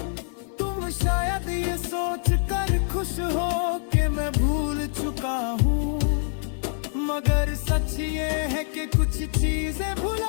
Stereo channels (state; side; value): silent; right; 58 dB below the other